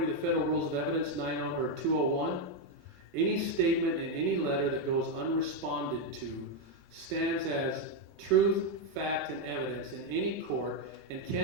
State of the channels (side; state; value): both; normal; correlation 0.03